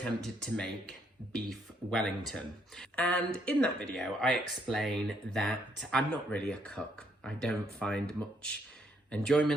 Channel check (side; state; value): both; normal; correlation 0.71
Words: to make beef Wellington. And in that video, I explain that I'm not really a cook. I don't find much